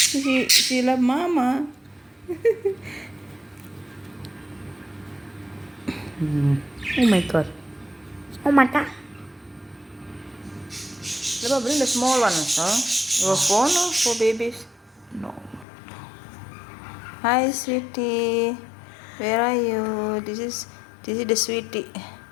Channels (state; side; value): drops out; right; at 15.7 s